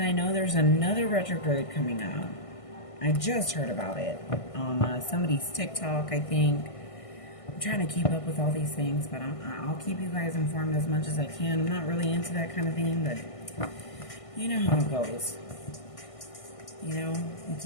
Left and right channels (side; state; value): right; late; 1.6 ms